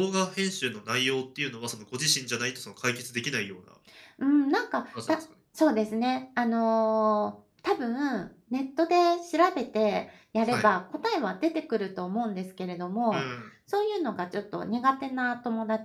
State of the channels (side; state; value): both; identical; correlation 1.00